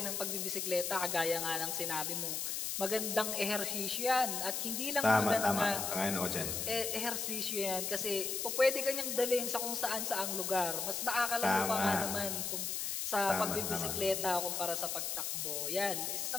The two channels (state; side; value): noise; left; hiss, 2 dB below the sound